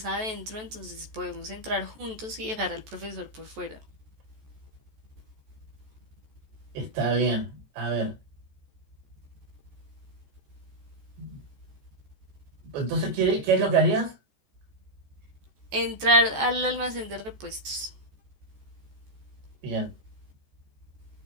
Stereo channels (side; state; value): left; late; 14 ms